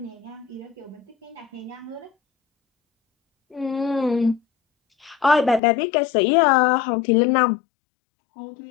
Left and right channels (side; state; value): right; drops out; at 5.6 s